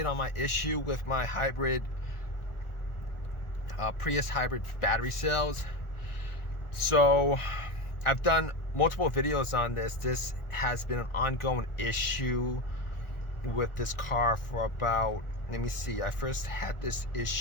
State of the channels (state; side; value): late; right; 1.4 ms